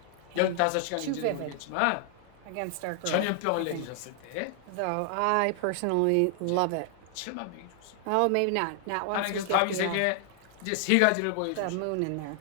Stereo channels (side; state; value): both; different; correlation 0.00